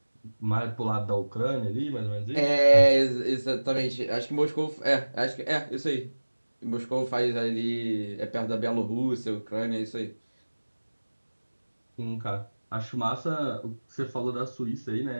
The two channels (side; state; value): both; inverted; correlation -1.00